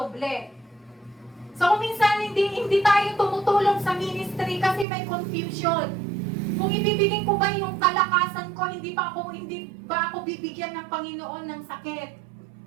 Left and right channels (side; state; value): left; drops out; at 4.9 s